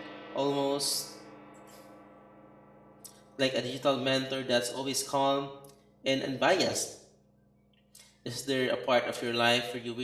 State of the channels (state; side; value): identical; both; correlation 1.00